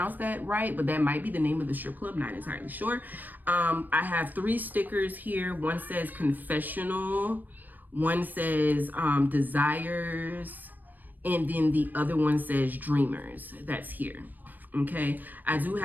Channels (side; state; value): left; late; 0.088 ms